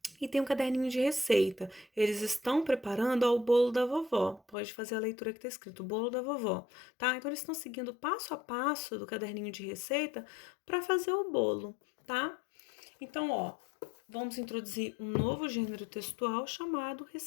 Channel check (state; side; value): drops out; right; at 4.5 s